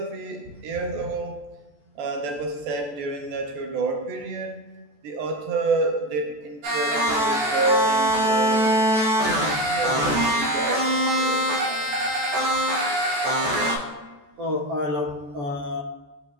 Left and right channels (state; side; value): late; left; 14 ms